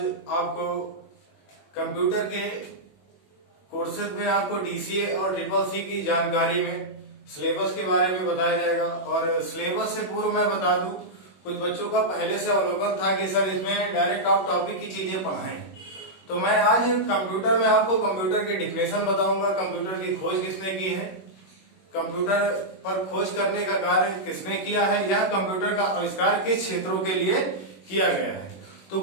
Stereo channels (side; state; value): right; late; 21 ms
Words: आपको कंप्यूटर के कोर्सेज में आपको डीसीए और ट्रिपल सी की जानकारी में सिलेबस के बारे में बताया जाएगा। और सिलेबस से पूर्व मैं बता दूं, कुछ बच्चों का पहले से अवलोकन था कि सर इसमें डायरेक्ट आप टॉपिक की चीजें पढ़ाएं, तो मैं आज कंप्यूटर में आपको कंप्यूटर की डिफिनेशन बताऊंगा, कंप्यूटर की खोज किसने की है, कंप्यूटर पर खोज करने का कार्य किसने किया है, यह कंप्यूटर का आविष्कार किस क्षेत्रों के लिए किया गया है। तो